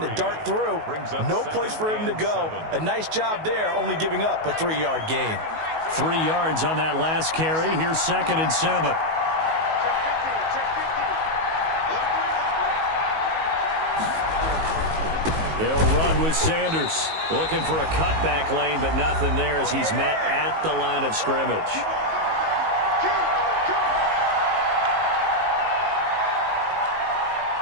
to dart through. No place for him to go. A nice job there, only giving up a 3-yard gain. 3 yards on that last carry. Here's 2nd and 7. They'll run with Sanders. Looking for a cutback lane, but nothing there as he's met at the line of scrimmage.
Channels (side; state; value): left; late; 19 ms